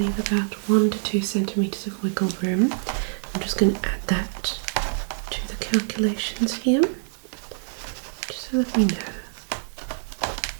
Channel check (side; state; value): left; silent; 61 dB below the other